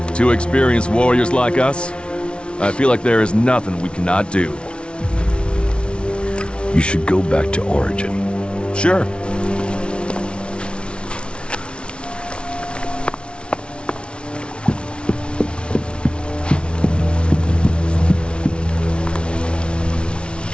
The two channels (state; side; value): late; right; 0.058 ms